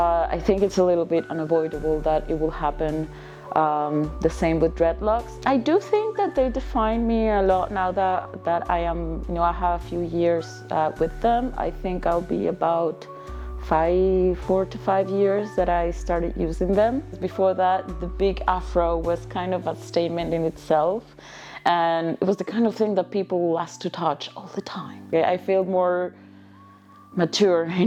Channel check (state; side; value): identical; both; correlation 1.00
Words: think it's a little bit unavoidable that it will happen the same with dreadlocks. I do think that they define me a lot now that I am, I have a few years with them. I think I'll be about 4 to 5 years that I started using them. Before that, the big afro was kind of a statement in itself. And it was the kind of thing that people will ask to touch all the time. I feel more mature